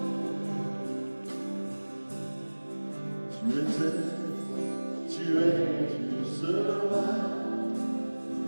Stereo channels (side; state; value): both; inverted; correlation -1.00